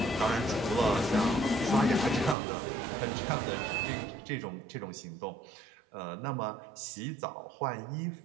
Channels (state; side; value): drops out; left; at 2.4 s